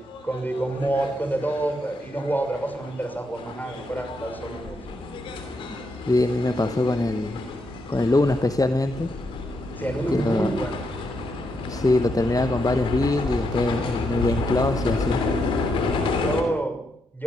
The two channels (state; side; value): normal; both; correlation 0.80